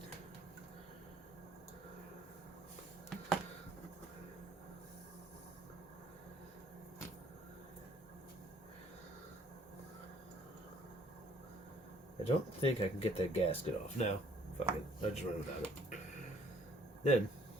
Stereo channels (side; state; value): both; normal; correlation 0.61